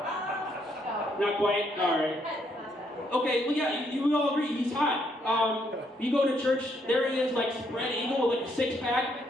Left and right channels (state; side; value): normal; both; correlation 0.73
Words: Not quite. All right. Okay. Well, yeah. You all agree he's hot. You go to church, there he is, like spread eagle with like a